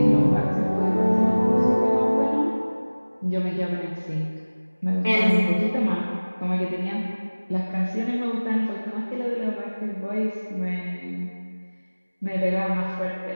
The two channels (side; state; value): both; inverted; correlation -1.00